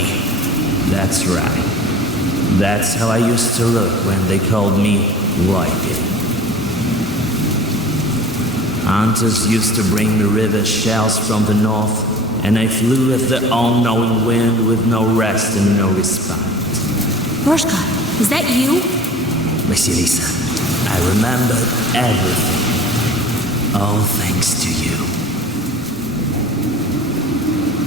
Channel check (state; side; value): normal; both; correlation 0.42